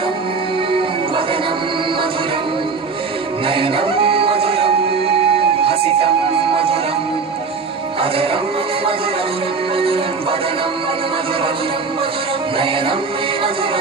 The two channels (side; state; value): left; quieter; 4.8 dB